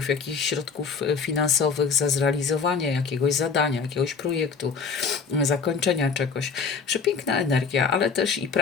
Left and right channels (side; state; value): right; quieter; 5.6 dB